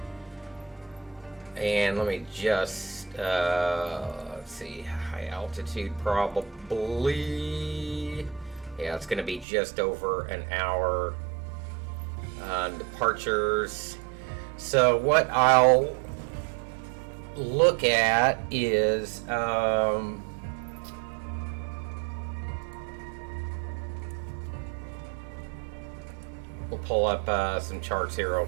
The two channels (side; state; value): left; drops out; at 9.5 s